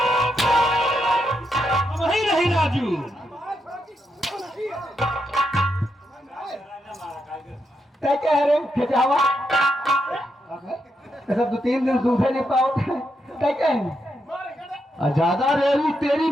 वही नहीं राजू। क्या कह रहे खिंचावा ऐसा 2-3 दिन सूखे नहीं पाओ क्या कहें? ज्यादा रेवी तेरी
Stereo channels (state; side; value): normal; both; correlation 0.82